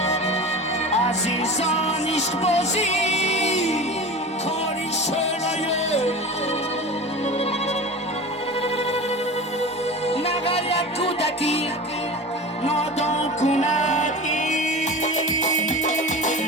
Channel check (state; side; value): normal; both; correlation 0.32